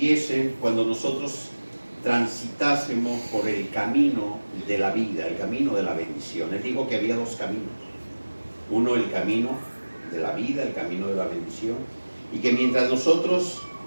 cuando nosotros transitásemos por el camino de la vida, el camino de la bendición. Él dijo que había dos caminos. Uno, el camino de la vida, el camino de la bendición. Y que mientras nosotros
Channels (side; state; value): both; inverted; correlation -1.00